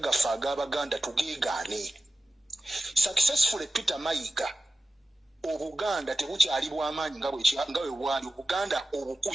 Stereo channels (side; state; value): both; normal; correlation 0.94